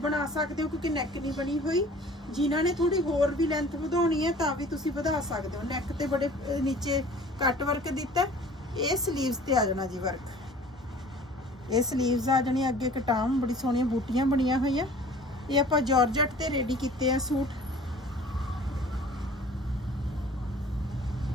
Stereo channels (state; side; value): normal; both; correlation 0.48